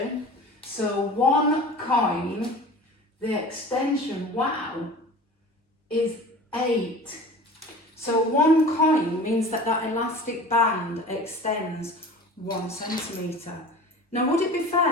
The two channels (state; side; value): normal; both; correlation 0.39